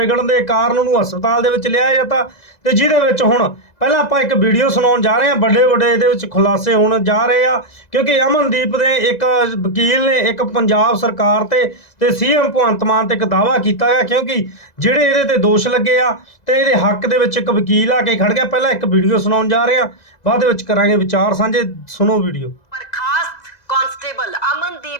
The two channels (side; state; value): right; late; 2.0 ms